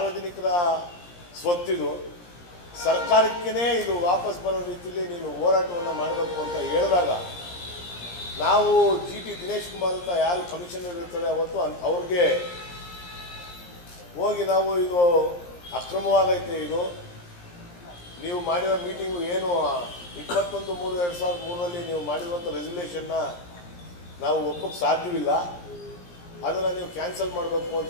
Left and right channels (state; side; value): late; right; 17 ms